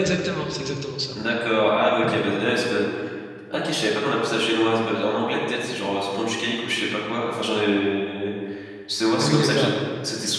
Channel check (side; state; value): both; identical; correlation 1.00